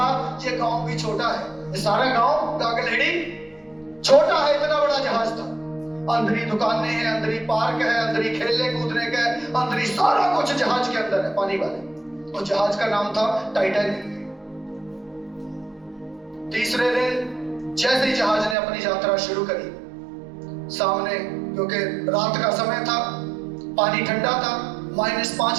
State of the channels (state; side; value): drops out; left; at 18.6 s